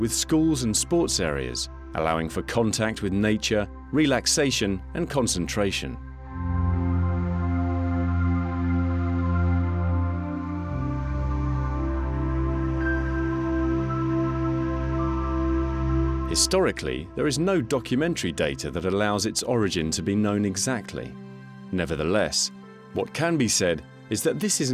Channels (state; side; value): identical; both; correlation 1.00